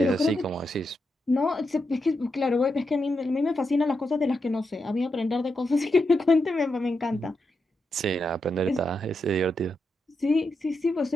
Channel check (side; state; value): both; normal; correlation 0.85